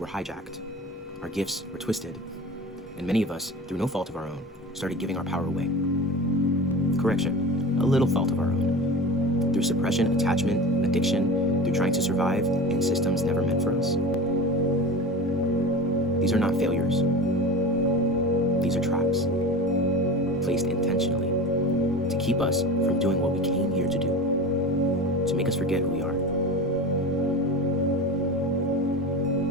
hijacked. Our gifts were twisted, and many of us, through no fault of our own, started giving our power away. Correction, a little fault of our own. Through suppression, attachment, addiction, through trying to survive in systems never meant for us. These are not failures. These are traps, placed intentionally to keep us from doing what we came here to do, to make us forget who we are.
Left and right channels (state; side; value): normal; both; correlation 0.31